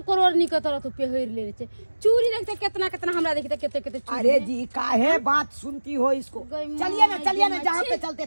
करोड़ नी के तरह तू पहिर ले छे चूड़ी देखते कितना कितना हमरा देखते कितने कितने चूड़ी अरे जी काहे बात सुनती हो इसको। चलिए ना जहाँ पे चलते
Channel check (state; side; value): inverted; both; correlation -1.00